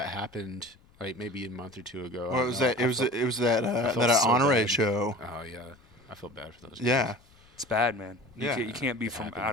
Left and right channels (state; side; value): noise; left; rumble, 29 dB below the sound